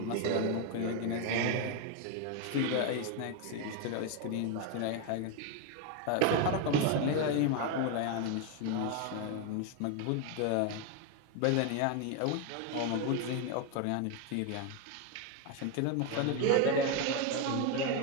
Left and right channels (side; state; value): both; different; correlation 0.01